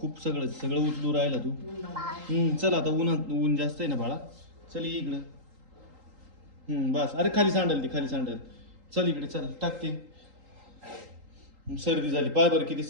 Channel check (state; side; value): late; left; 3.8 ms